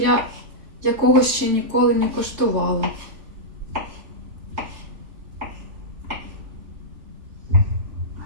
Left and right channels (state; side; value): late; left; 3.4 ms